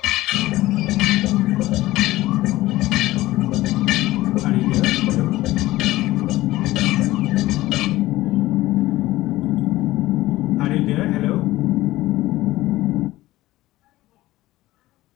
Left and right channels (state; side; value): quieter; right; 17.1 dB